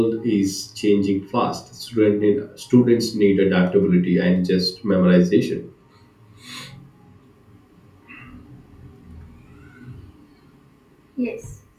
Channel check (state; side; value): identical; both; correlation 1.00